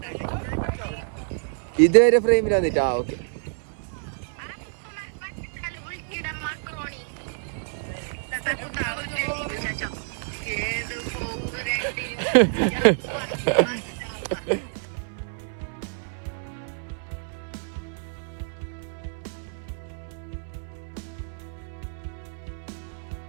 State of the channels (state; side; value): silent; left; 59 dB below the other